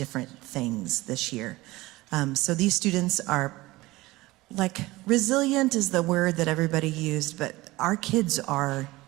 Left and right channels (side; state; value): left; quieter; 19.7 dB